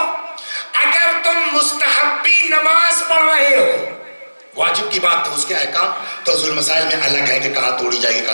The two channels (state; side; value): inverted; both; correlation -1.00